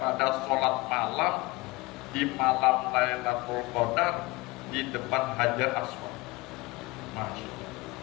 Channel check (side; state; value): right; quieter; 22.5 dB